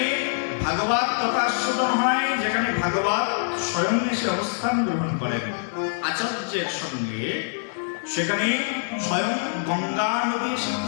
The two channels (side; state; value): right; silent; 62 dB below the other